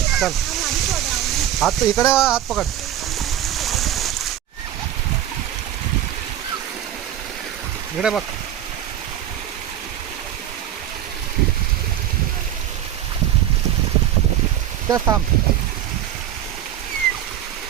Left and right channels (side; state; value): left; quieter; 11.5 dB